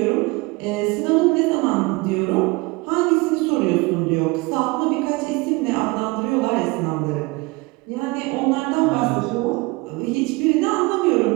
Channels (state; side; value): quieter; left; 24.7 dB